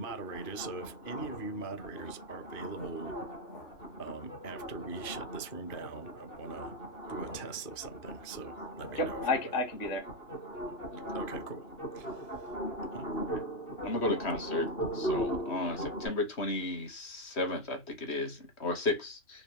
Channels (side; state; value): right; late; 2.5 ms